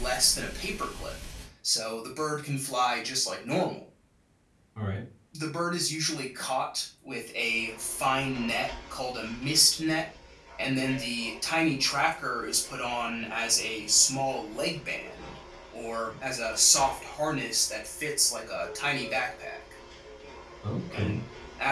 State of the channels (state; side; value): identical; both; correlation 1.00